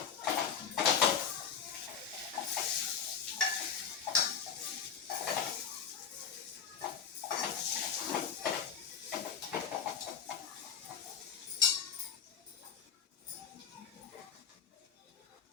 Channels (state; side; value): quieter; right; 7.3 dB